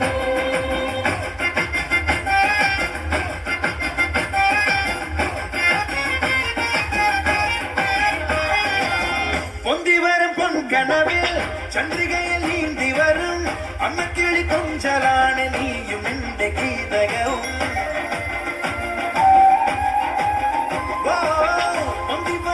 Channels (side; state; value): both; identical; correlation 1.00